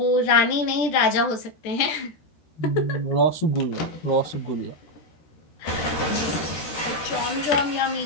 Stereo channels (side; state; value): right; late; 13 ms